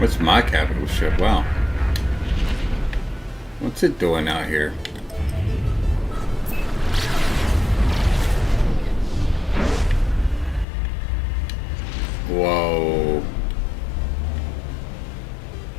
my capital ship? Wow. What's it doing out here? Whoa.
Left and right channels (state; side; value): drops out; right; at 10.7 s